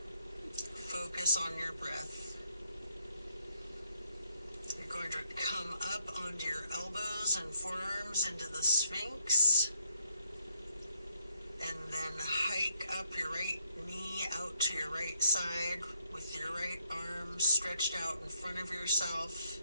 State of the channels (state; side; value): inverted; both; correlation -0.76